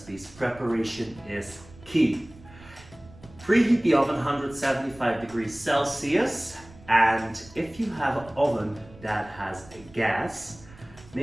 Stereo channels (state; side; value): noise; right; rumble, 21 dB below the sound